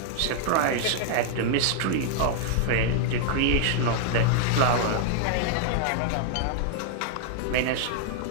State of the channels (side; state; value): both; different; correlation -0.01